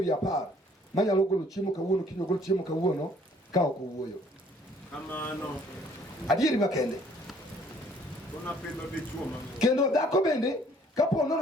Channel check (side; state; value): both; normal; correlation 0.60